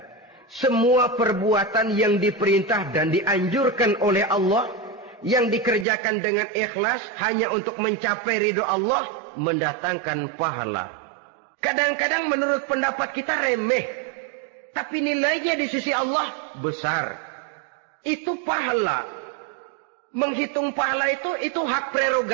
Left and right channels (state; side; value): drops out; left; at 5.9 s